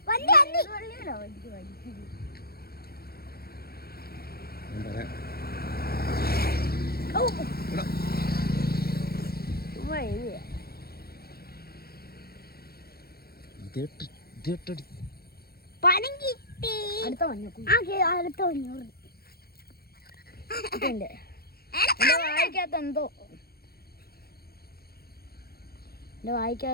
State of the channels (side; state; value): right; late; 0.45 ms